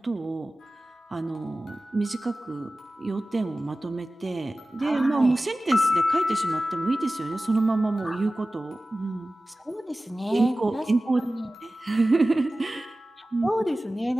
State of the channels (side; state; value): both; normal; correlation 0.96